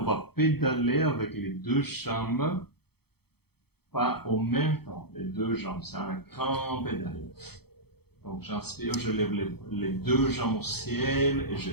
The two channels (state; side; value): late; right; 0.96 ms